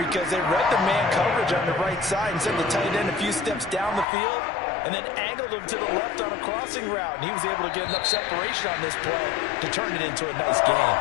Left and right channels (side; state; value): right; drops out; at 4.0 s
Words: they read the man coverage on the right side and sent the tight end a few steps down the field and then angled him to the left on a crossing route. And he was able to get enough separation on this play to turn it into a nice game.